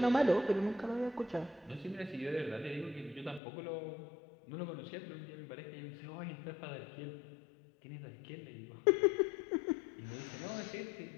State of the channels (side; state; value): right; drops out; at 3.4 s